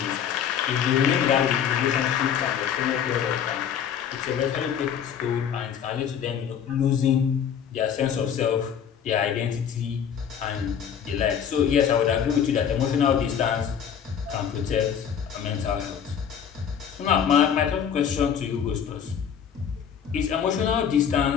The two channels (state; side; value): quieter; right; 8.3 dB